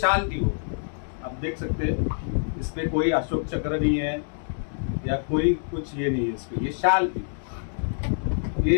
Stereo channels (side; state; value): right; silent; digital silence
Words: थी वो। आप देख सकते हैं इसमें कोई अशोक चक्र नहीं है या कोई कुछ ये नहीं है, इसमें ये शाल थी।